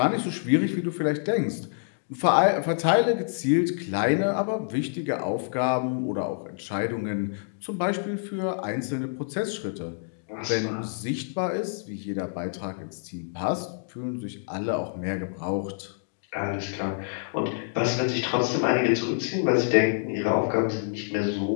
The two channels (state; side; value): silent; right; digital silence